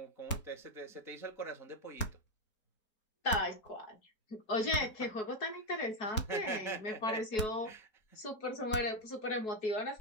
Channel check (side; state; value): right; late; 4.4 ms